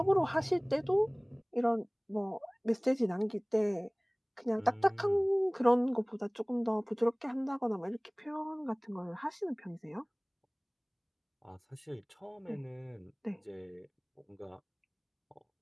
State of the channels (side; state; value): both; identical; correlation 1.00